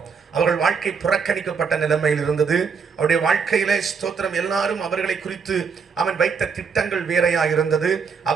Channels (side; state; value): left; quieter; 5.8 dB